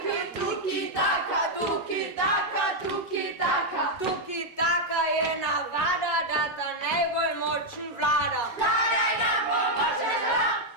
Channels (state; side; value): normal; both; correlation -0.01